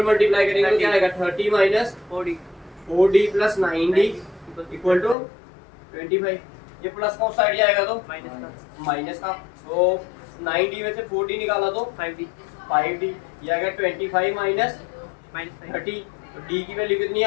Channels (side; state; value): right; drops out; at 5.2 s